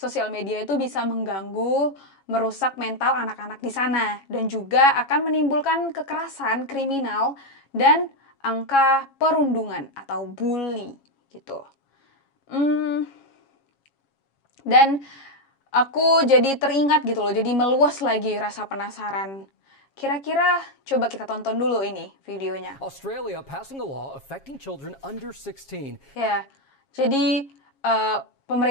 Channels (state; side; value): late; right; 7.3 ms